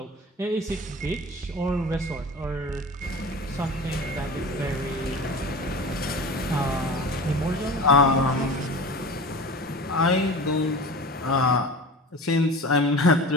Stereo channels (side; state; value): both; normal; correlation 0.35